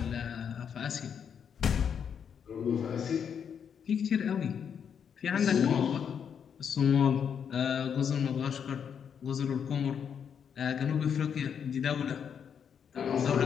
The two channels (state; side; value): quieter; right; 7.6 dB